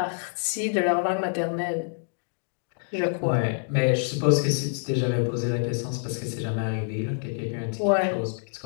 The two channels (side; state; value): right; silent; digital silence